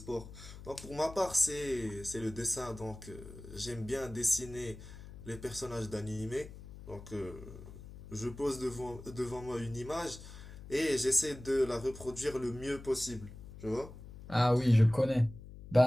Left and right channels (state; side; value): noise; left; hum, 15 dB below the sound